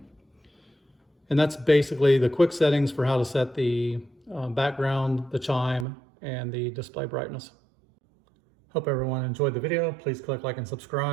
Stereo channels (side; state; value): left; drops out; at 5.9 s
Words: And that's basically the quick settings for how to set the background, the chime, and the display brightness. Hope everyone enjoyed the video. Please click like and